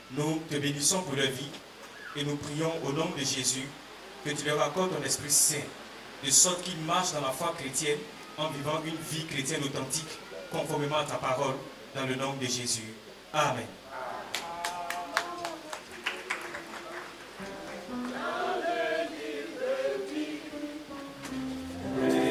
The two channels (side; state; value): both; identical; correlation 1.00